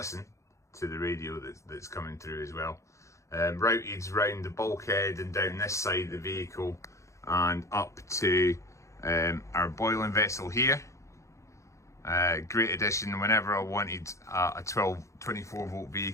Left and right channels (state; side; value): late; right; 0.15 ms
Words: to the radio that's coming through as well. Routed round the bulkhead and down this side of the vehicle and up to our boiling vessel here. Great addition. Whenever I wanted a 24 volt